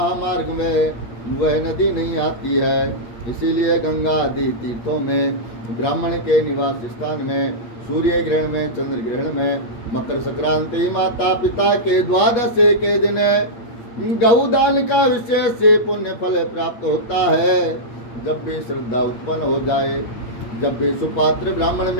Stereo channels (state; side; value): late; right; 8.5 ms